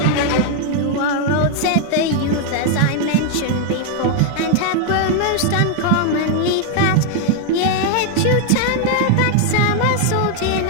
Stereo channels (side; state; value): both; different; correlation 0.00